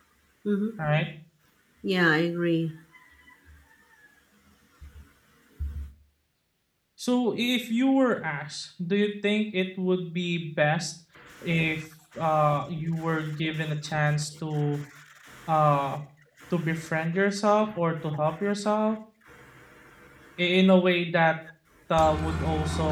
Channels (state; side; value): identical; both; correlation 1.00